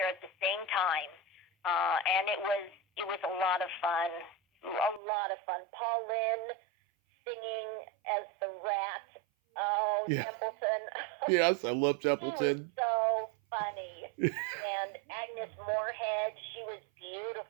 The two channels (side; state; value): left; drops out; at 5.0 s